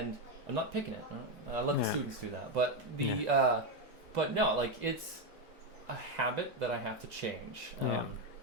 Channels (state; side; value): normal; both; correlation 0.06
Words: I'm not picking it. I let the students do that, but but no, like, it's a habit that I have to change,